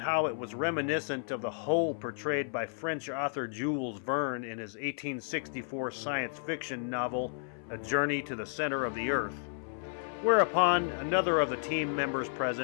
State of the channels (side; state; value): right; silent; 56 dB below the other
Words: it was reminiscent of the hole portrayed by French author Jules Verne in his 1864 science fiction novel, A Journey to the Center of the Earth. Whereupon, another of the team members